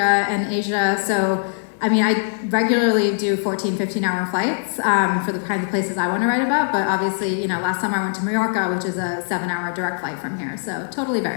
and Asia. So, I mean, I regularly do 14, 15-hour flights for the kinds of places I want to write about. But obviously, last summer I went to Mallorca, which is a 7-hour direct flight from here. So, totally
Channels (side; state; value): right; silent; 61 dB below the other